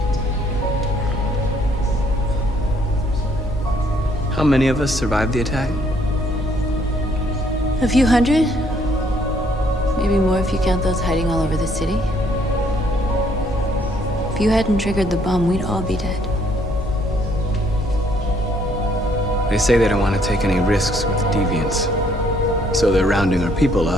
How many of us survived the attack? A few hundred? Maybe more if you count those hiding all over the city. If you hadn't triggered the bomb, we'd all be dead. They say they don't want to take any risks with deviants. So they're rounding our people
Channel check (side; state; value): both; normal; correlation 0.66